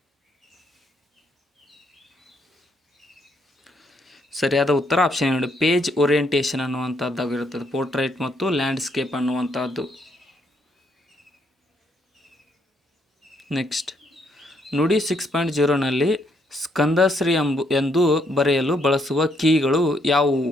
ಸರಿಯಾದ ಉತ್ತರ ಆಪ್ಷನ್ ಏನು, ಪೇಜ್ ಓರಿಯೆಂಟೇಷನ್ ಅನ್ನುವಂಥದ್ದಾಗಿರುತ್ತದೆ ಪೋರ್ಟ್ರೈಟ್ ಮತ್ತು ಲ್ಯಾಂಡ್ಸ್ಕೇಪ್ ಅನ್ನುವಂಥದ್ದು. ನೆಕ್ಸ್ಟ್, ನುಡಿ 6.0ನಲ್ಲಿ ಸ್ಕಂದಶ್ರೀ ಎಂದು ಬರೆಯಲು ಬಳಸುವ ಕೀಗಳು ಯಾವುವು?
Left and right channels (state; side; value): normal; both; correlation 0.73